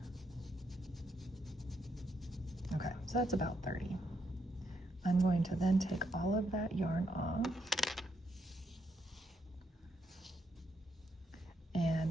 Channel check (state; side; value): normal; both; correlation 0.78